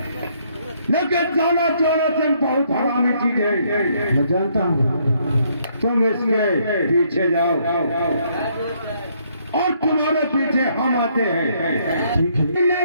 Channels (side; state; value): both; inverted; correlation -0.69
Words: लेकिन जाना तुम बहुत हरामी चीज है। मैं जानता हूँ। तुम इसके पीछे जाओ और तुम्हारे पीछे हम आते हैं। ठीक है?